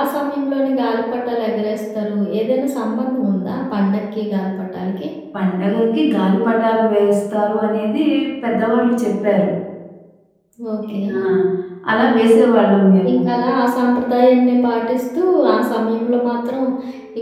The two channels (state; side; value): identical; both; correlation 1.00